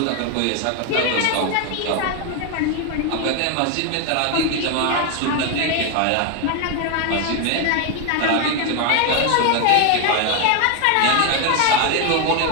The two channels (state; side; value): different; both; correlation 0.01